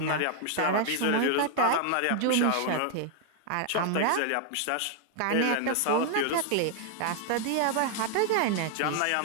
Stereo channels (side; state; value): both; different; correlation 0.00